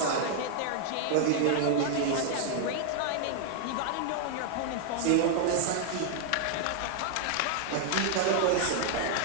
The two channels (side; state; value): both; different; correlation 0.00